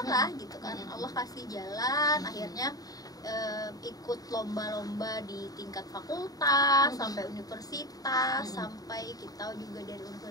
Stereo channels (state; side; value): late; right; 0.18 ms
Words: lah gitu kan. Allah kasih jalan, akhirnya ikut lomba-lomba di tingkat fakultas sampai universitas, sampai kita juga dari